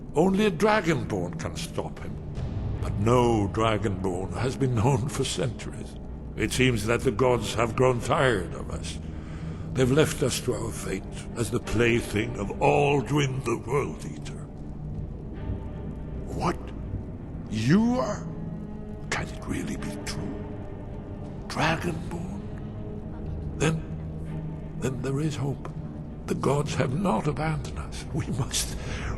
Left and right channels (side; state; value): both; identical; correlation 1.00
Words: Only a dragonborn can stop him. But no dragonborn has been known for centuries. It seems that the gods have grown tired of us. They've left us to our fate as the plaything of Alduin the World Eater. What? You are? Can it really be true? Dragonborn? Then there is hope. The gods have not abandoned us.